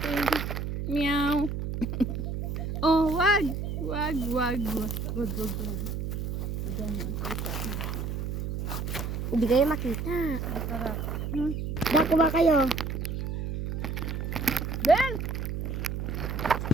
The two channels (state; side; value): noise; right; hum, 3 dB below the sound